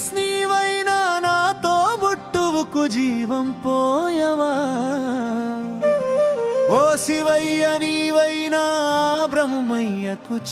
నీవైనా నాతో బుట్టువుకు జీవం పోయవా. ఓ శివయ్య నీవైనా బ్రహ్మయ్యకు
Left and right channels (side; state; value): both; identical; correlation 1.00